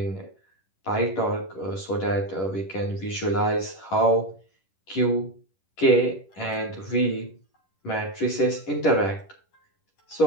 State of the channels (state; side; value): late; right; 10 ms